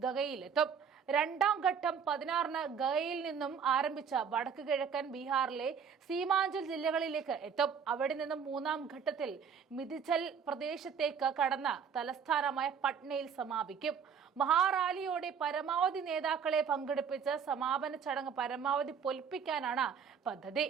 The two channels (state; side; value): quieter; left; 6.9 dB